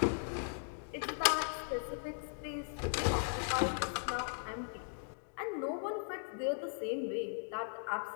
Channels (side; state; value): right; silent; digital silence